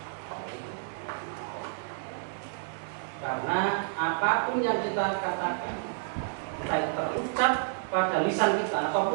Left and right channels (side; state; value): left; silent; digital silence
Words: Karena apapun yang kita katakan, baik terucap pada lisan kita